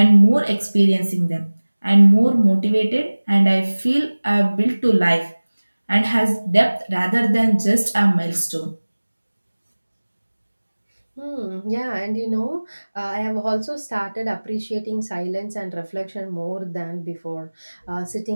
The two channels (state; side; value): inverted; both; correlation -1.00